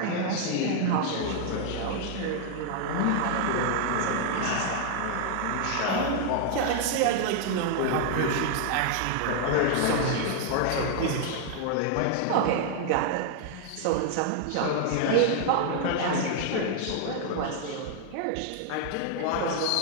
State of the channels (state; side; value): different; both; correlation 0.00